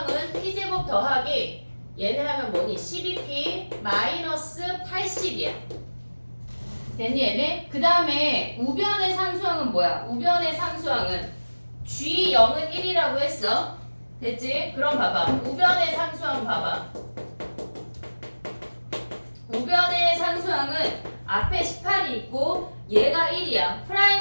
p제곱 더하기 얘네 하면 뭐니? 12p 마이너스 80이야. 됐니 얘네? 그 다음에 우변의 상수항은 뭐야? 우변의 상수항은 g0은 1이라고 했어. 됐지? 그럼 봐봐. 우변의 상수항 봐봐. 우변의 상수항은 앞에 18이 있고 얘가 1이야.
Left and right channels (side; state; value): both; inverted; correlation -1.00